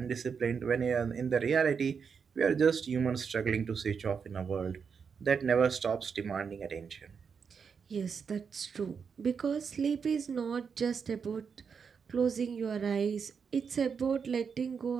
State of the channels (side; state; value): left; quieter; 6.2 dB